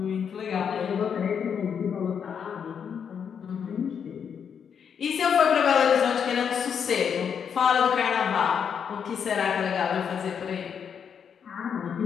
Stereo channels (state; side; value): quieter; right; 7.4 dB